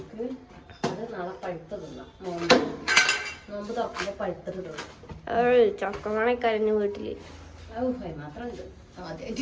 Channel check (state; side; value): identical; both; correlation 1.00